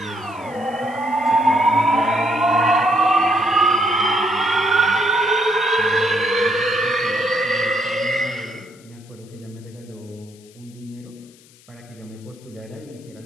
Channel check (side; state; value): left; noise; hiss, 27 dB below the sound